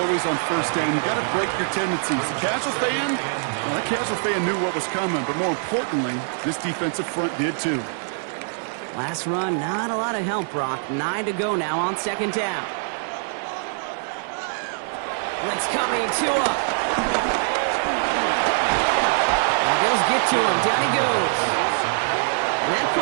on 1st down. You got to break your tendencies. The casual fan, well, that casual fan knew what was coming, but more importantly, this defensive front did too. Last run, not a lot of help, Brock. 9 to go now on 2nd down. Blitz coming, Tua. Bills get to him. Down he goes. And that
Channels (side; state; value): left; silent; 61 dB below the other